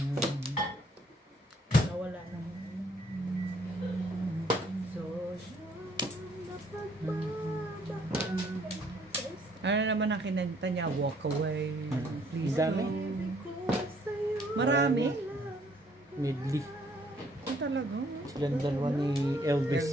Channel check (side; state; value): both; normal; correlation 0.64